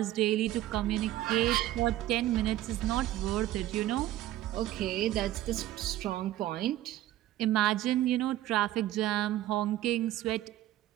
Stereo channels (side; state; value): left; quieter; 14.3 dB